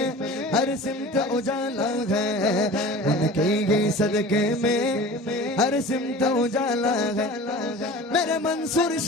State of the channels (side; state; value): both; normal; correlation 0.39